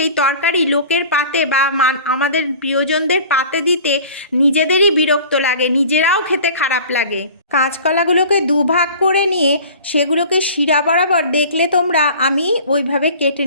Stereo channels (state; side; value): inverted; both; correlation -0.43